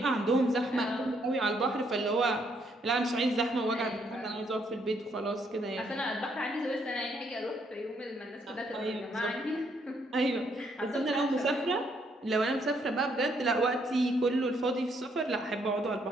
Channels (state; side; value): normal; both; correlation 0.72